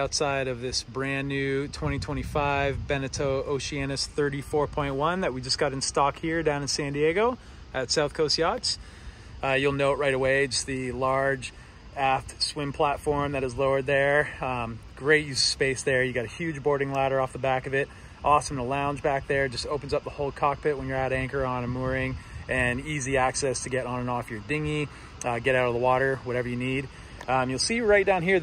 of this brand new 2025 Beneteau Oceanis 34.1 that we just got in stock here down in San Diego at South Coast Yachts. You'll note right away just the large aft swim platform that is lowered there. Great use of space there. You got a huge boarding ladder off the back of it. Awesome to lounge back there. Just opens up the whole cockpit when you're at anchor on a mooring, and easy access to get on and off your dinghy, get out of the water, whatever you need. You'll see right down here,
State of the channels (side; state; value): both; identical; correlation 1.00